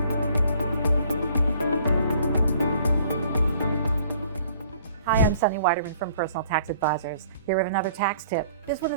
Hi, I'm Sunny Weiderman from Personal Tax Advisors, here with another tax tip. This one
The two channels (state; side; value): inverted; both; correlation -0.58